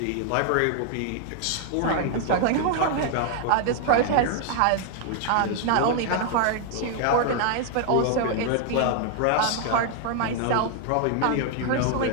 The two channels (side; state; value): both; different; correlation 0.00